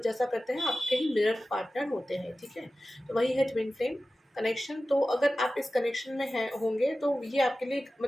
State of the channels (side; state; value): both; normal; correlation 0.95